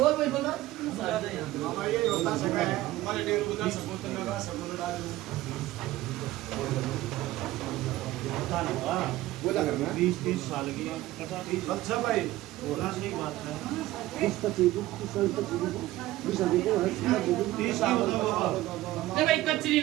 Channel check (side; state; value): left; quieter; 16.5 dB